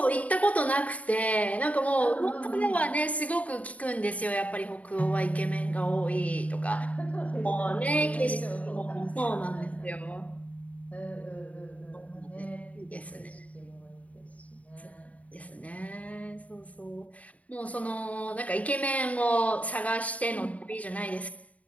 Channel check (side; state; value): right; late; 0.069 ms